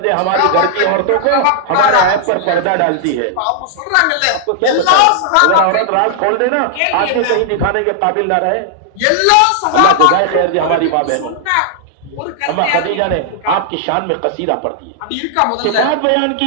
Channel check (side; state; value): both; different; correlation -0.01